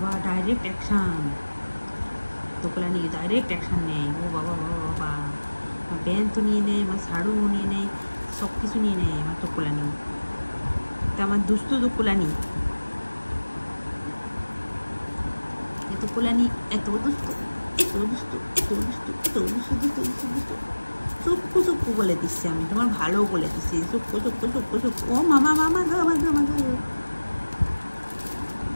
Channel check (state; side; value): inverted; both; correlation -1.00